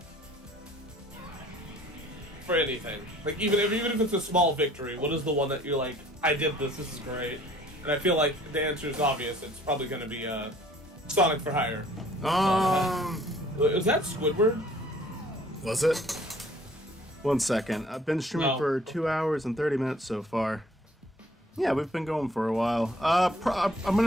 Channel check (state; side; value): normal; both; correlation 0.56